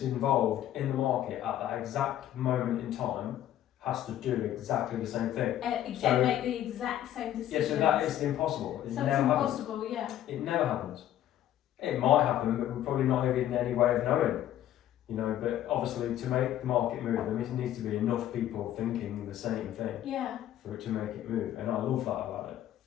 involved in the market at that exact moment in time has to do exactly the same thing. So make the exact same decision. Yeah, so that is impossible. It never happens. It never happens. It might happen, but we're probably not even in any way of knowing. You know, but obviously to make the market move, there needs to be enough people thinking the same thing for it to make it move. And I love that about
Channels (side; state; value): right; quieter; 12.0 dB